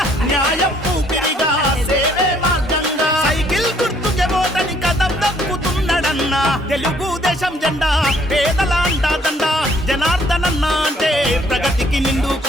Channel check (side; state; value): both; normal; correlation 0.64